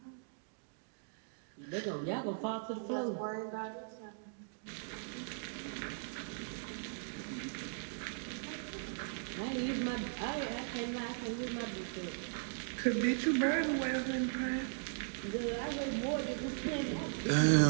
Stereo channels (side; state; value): left; silent; digital silence